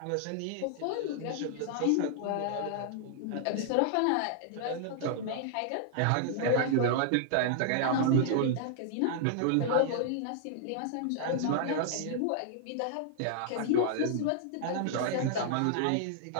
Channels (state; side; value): different; both; correlation -0.01